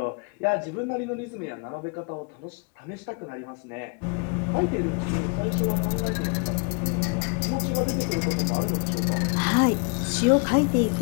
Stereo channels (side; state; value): right; quieter; 33.2 dB